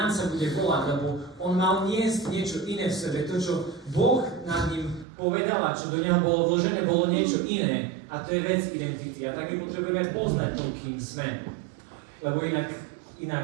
sa bude volať, lebo on mal niesť niečo iné v sebe. To, čo Boh nad ním povedal a čo do neho bolo vložené, bolo niečo iné. A to je vec identity. A tak my potrebujeme poznať to, kým sme. Lebo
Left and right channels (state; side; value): drops out; left; at 5.1 s